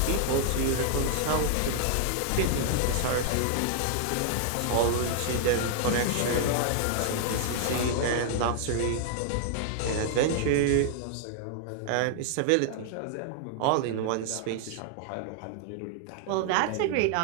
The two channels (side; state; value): both; different; correlation 0.00